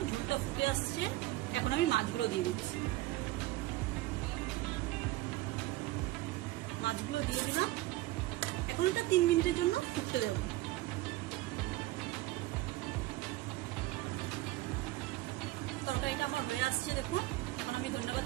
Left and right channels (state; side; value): quieter; left; 17.7 dB